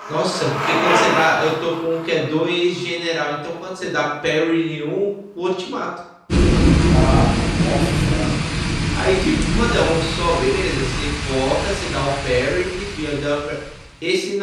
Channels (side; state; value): both; identical; correlation 1.00